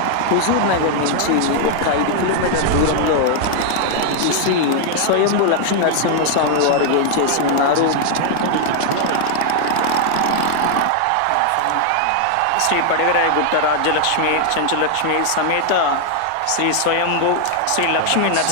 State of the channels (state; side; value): different; both; correlation 0.00